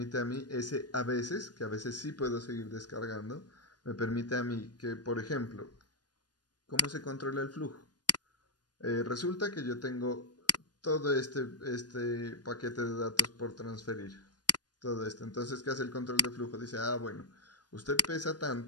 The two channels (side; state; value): right; late; 0.69 ms